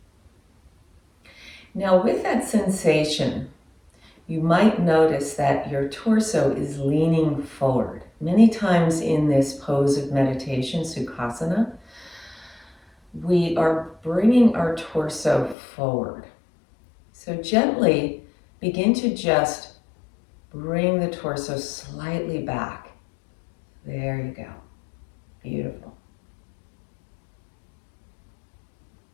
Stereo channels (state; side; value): drops out; right; at 15.6 s